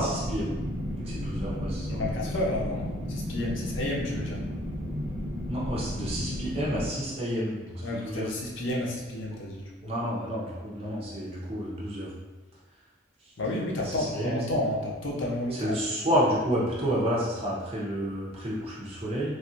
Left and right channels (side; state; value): both; normal; correlation 0.48